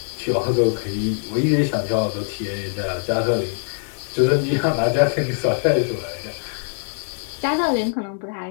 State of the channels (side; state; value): right; silent; digital silence